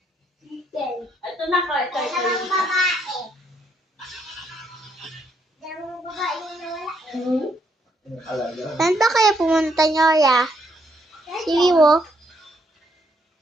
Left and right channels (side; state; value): both; normal; correlation 0.73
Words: Chicken. Ito na ka, ito. Dalawang babae. Dalawang babae yung nawala. Saan ba kayo pumunta niyo, ya? Si Wiwo?